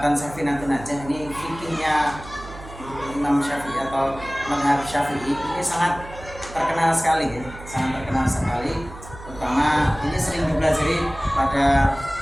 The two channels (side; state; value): right; noise; hum, 15 dB below the sound